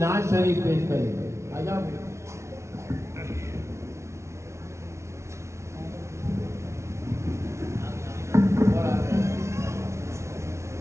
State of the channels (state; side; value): late; left; 0.13 ms